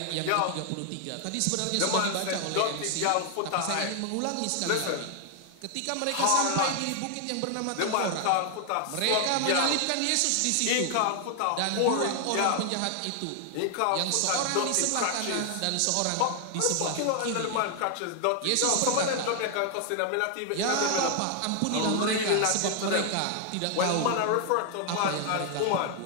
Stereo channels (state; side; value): different; both; correlation 0.00